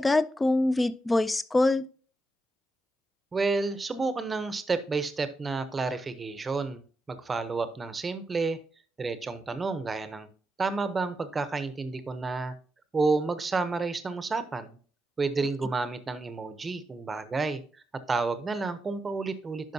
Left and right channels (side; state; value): both; normal; correlation 0.87